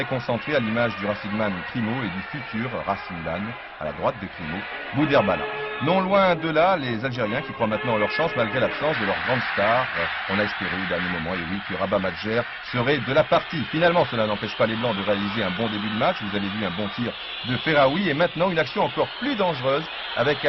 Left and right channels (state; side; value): identical; both; correlation 1.00